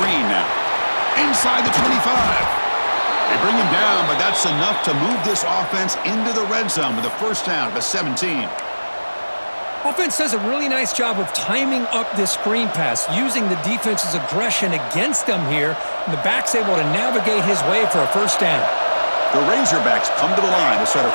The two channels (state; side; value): inverted; both; correlation -1.00